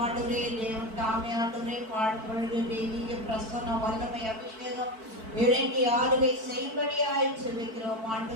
ஆண்டவரே. தேவன் தாமே ஆண்டவரே பாடுபொழுது தெய்வீக பிரசன்ன வல்லமை அபிஷேகம் இறங்கி ஆளுகை செய்வடியாய் செபிக்கிறோம்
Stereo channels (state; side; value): late; left; 4.5 ms